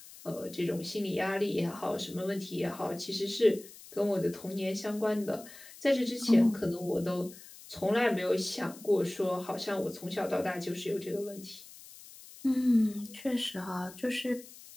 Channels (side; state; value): left; noise; hiss, 18 dB below the sound